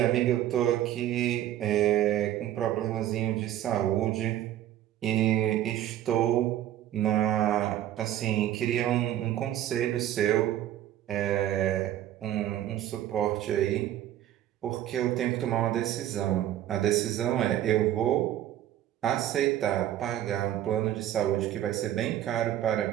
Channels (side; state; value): left; quieter; 12.3 dB